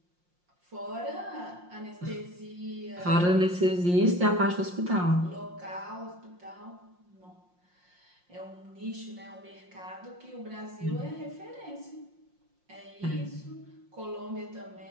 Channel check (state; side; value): late; left; 5.6 ms